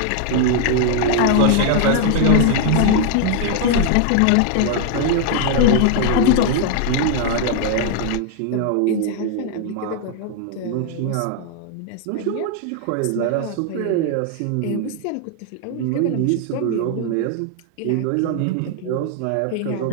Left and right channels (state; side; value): different; both; correlation 0.00